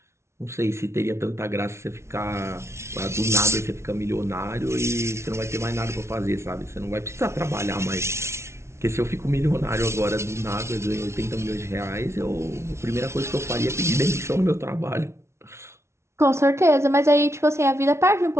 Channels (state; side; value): late; left; 0.13 ms